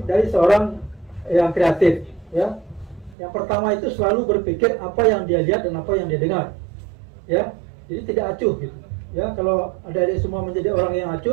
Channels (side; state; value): left; drops out; at 3.2 s